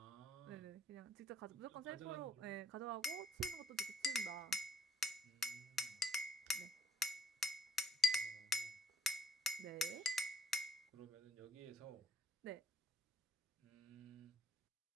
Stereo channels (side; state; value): both; normal; correlation 0.58